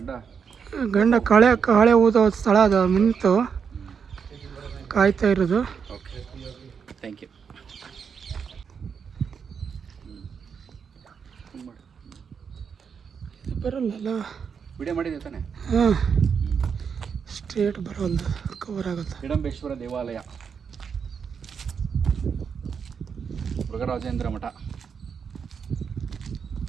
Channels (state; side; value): quieter; left; 6.5 dB